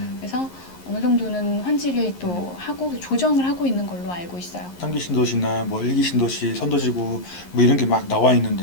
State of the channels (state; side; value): late; right; 11 ms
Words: 그래서 어느 정도는 환지를 또 하고 조정을 하고 있는 걸로 알고 있어요. 3기 신도시나 뭐 1기 신도시, 선도지구 뭐 이런 게 막 나와